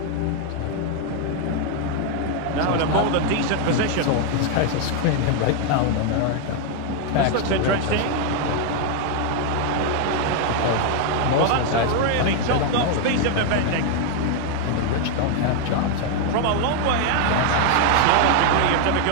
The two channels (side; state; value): both; different; correlation 0.00